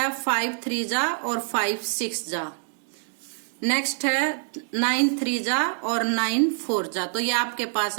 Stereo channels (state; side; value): silent; left; digital silence